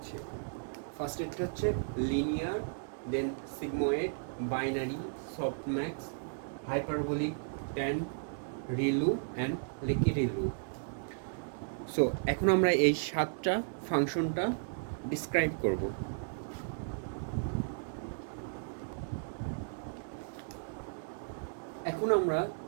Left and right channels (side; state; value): left; silent; digital silence